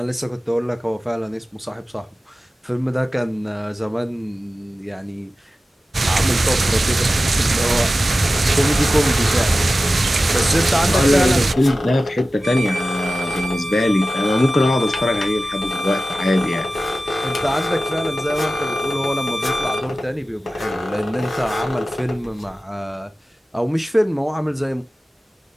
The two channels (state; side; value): normal; both; correlation 0.95